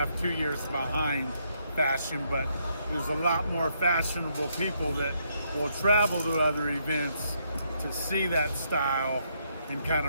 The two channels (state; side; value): inverted; both; correlation -0.75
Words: 2 years behind fashion, but there's a lot more fashionable people that will travel to other events to see that style and kind